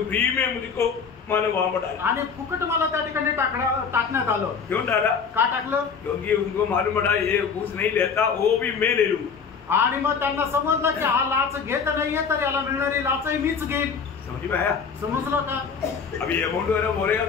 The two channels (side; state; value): right; quieter; 6.0 dB